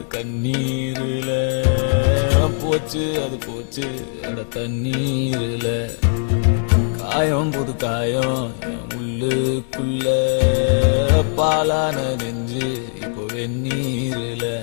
கண்ணீரில போச்சு, அது போச்சு அட தண்ணீரில. காயம் புது காயம் என் உள்ளுக்குள்ள பாலான நெஞ்சு இப்போ வெந்நீரில.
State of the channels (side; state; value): right; silent; digital silence